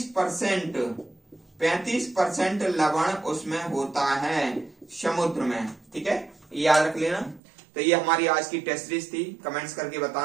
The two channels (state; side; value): drops out; left; at 7.4 s